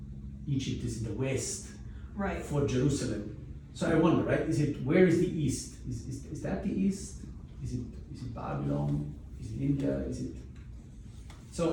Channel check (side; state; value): both; identical; correlation 1.00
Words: Egypt is in the west. Right. For Jerusalem. So I wonder, right? Where is the east? Is that the east? Is it Babylon? Is it India? Is it?